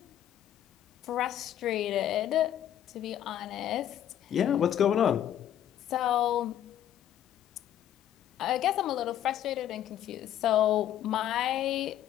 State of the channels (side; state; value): right; quieter; 11.2 dB